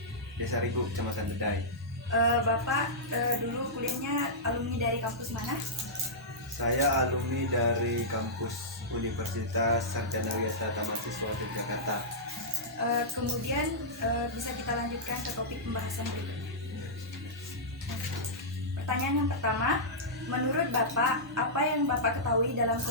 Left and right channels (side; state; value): both; normal; correlation -0.13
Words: Desa Rigu, Kecamatan Bedai. Bapak dulu kuliahnya alumni dari kampus mana? Saya alumni dari kampus Universitas Sarjana Wisata Mahasiswa Yogyakarta. Kemudian bisa kita lanjutkan ke topik pembahasan berikutnya. Pertanyaan yang pertama, menurut Bapak, apa yang Bapak ketahui dalam